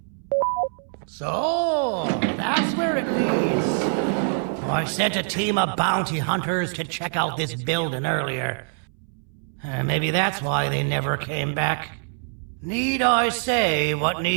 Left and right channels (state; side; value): silent; left; 62 dB below the other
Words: So, that's where it leads. I sent a team of bounty hunters to check out this building earlier. Maybe that's why they never came back. Need I say what